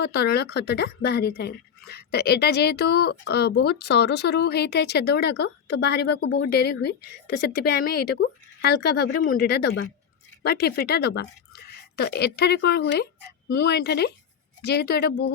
तरल खतटा बाहरी थाए। तो यहाँ जेहेतु बहुत सरू सरू होता है छेद गुड़ाक तो बाहर को बहुत डेरी हुए तो से आम यहाँ को हल्का भाव में मुंडीटा दबा ठिपीटा दबा। तो एठारे कौन हुए मुझे जेहेतु यहाँ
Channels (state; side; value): quieter; right; 7.6 dB